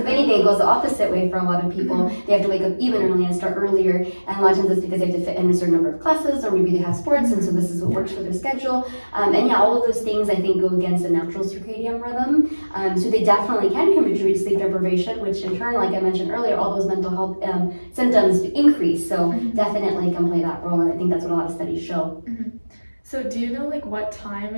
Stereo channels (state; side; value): inverted; both; correlation -1.00